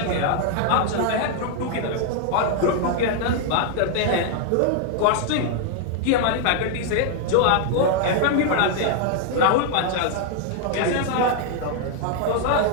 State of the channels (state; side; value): different; both; correlation 0.00